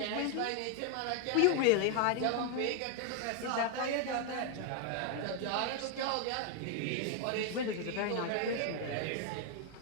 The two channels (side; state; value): both; different; correlation 0.01